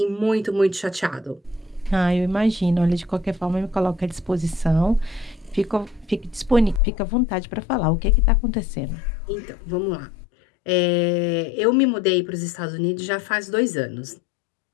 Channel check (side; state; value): right; drops out; at 6.8 s